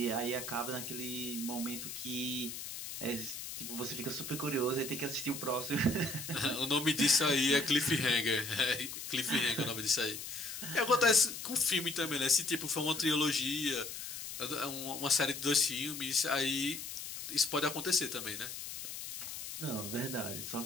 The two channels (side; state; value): left; noise; hiss, 8 dB below the sound